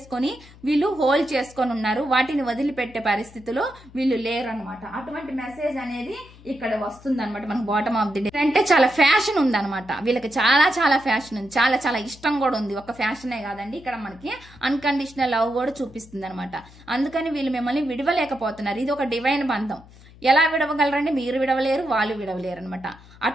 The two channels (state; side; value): noise; left; hum, 22 dB below the sound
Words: వీళ్ళు హోల్డ్ చేసుకొని ఉన్నారు. వాటిని వదిలిపెట్టే పరిస్థితిలో వీళ్ళు లేరు అనమాట. అటువంటి మెసేజ్ అనేది ఇక్కడ వస్తుంది అనమాట. మనకు బాటమ్ ఆఫ్ ది డే అంటే చాలా ఫ్యాషన్ ఉందన్నమాట. వీళ్ళకి చాలా ఫ్యాషన్ ఉంది, చాలా ఇష్టం కూడా ఉంది. ఒక ఫ్యాషనే కాదండి, ఇక్కడ మనకి అన్కండిషనల్ లవ్ కూడా చూపిస్తుంది అనమాట. అందుకని వీళ్ళు మిమ్మల్ని విడవలేకపోతున్నారు. ఇది ఒక డివైన్ బంధం. ఎలా విడవగలరండి? మీరు విడవలేరు, వాళ్ళు విడవలేరు అనమాట.